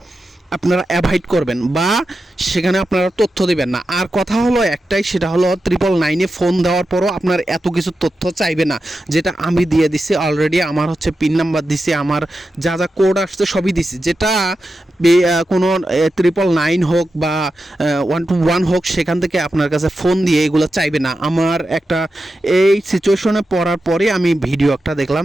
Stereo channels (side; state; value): both; normal; correlation 0.90